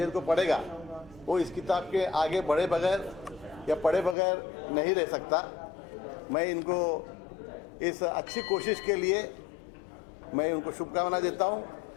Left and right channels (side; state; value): right; drops out; at 4.2 s